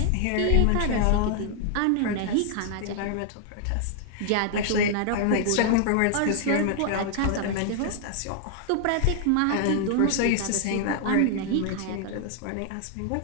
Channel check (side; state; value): both; different; correlation 0.00